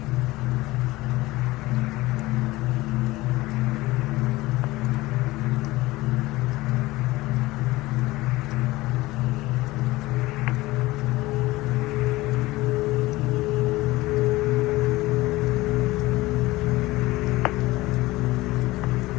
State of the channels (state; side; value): quieter; right; 19.5 dB